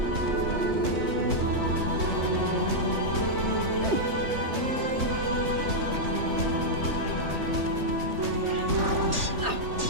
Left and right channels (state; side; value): late; left; 3.5 ms